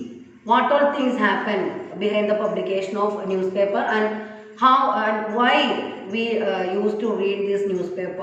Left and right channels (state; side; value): identical; both; correlation 1.00